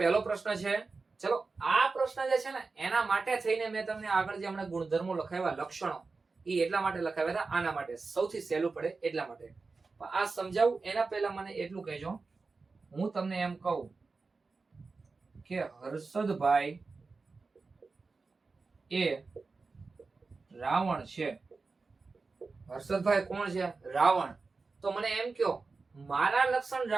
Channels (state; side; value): quieter; left; 4.1 dB